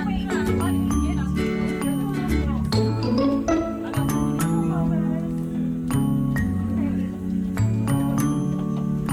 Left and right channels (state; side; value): identical; both; correlation 1.00